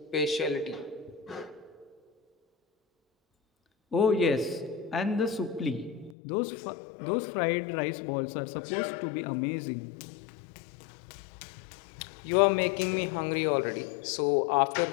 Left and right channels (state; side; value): drops out; right; at 6.2 s